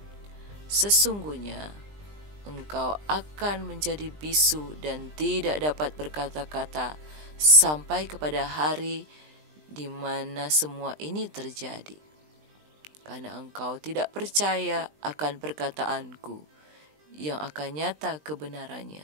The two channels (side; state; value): left; late; 20 ms